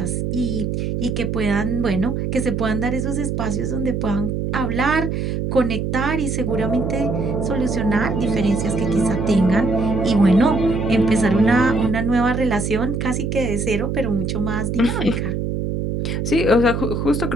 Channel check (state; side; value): noise; right; hum, 1 dB below the sound